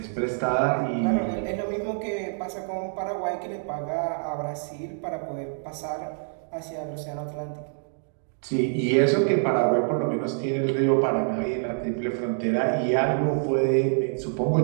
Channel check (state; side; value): silent; left; digital silence